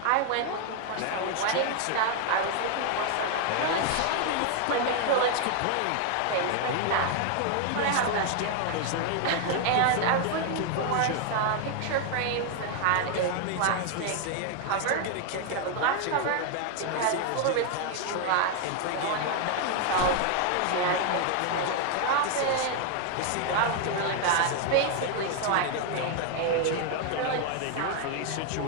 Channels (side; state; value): both; different; correlation 0.00